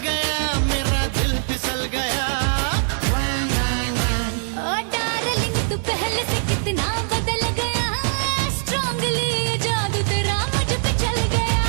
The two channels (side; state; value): left; silent; 64 dB below the other